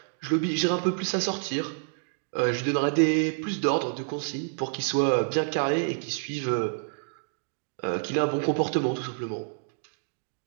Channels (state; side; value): silent; left; digital silence